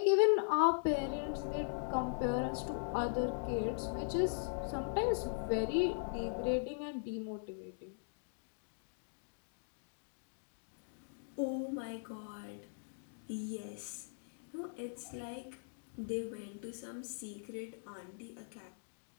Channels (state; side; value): silent; right; digital silence